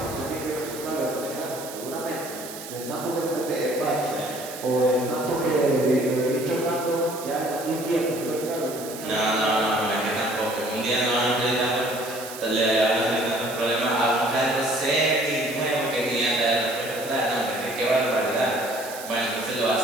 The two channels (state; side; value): noise; right; hiss, 12 dB below the sound